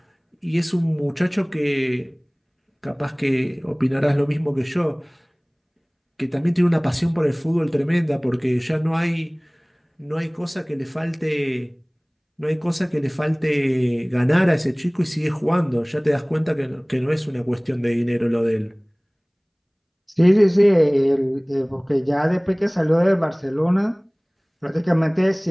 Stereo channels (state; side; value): identical; both; correlation 1.00